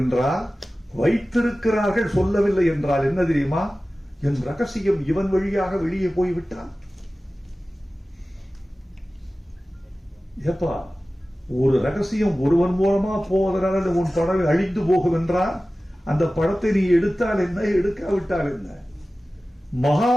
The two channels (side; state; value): both; normal; correlation 0.96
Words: என்றால், வைத்திருக்கிறார்கள் சொல்லவில்லை என்றால் என்ன தெரியுமா, என் ரகசியம் இவன் வழியாக வெளியே போய்விட்டான். ஏப்பா, ஒரு ரகசியம் ஒருவன் மூலமா போவதனால உன் படம் அழிந்து போகும் என்றால் அந்த படத்தை நீ எடுத்தால் என்ன, எடுக்காவிட்டால் என்ன?